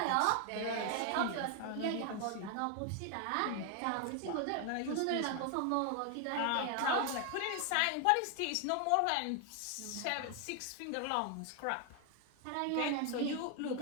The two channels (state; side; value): different; both; correlation 0.00